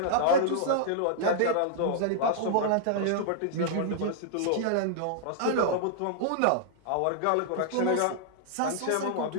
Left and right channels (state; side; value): different; both; correlation -0.01